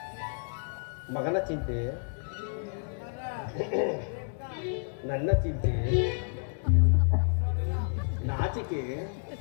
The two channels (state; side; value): silent; right; 58 dB below the other